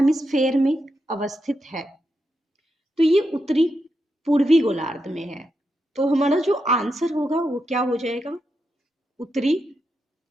में अवस्थित है? तो ये उत्तरी पूर्वी गोलार्ध में है। तो हमारा जो आंसर होगा वो क्या हो जाएगा? उत्तरी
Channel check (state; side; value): normal; both; correlation 0.85